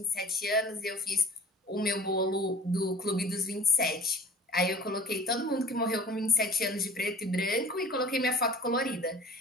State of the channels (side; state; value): both; normal; correlation 0.47